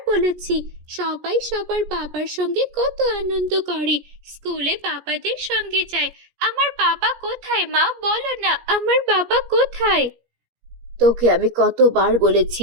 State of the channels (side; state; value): left; late; 17 ms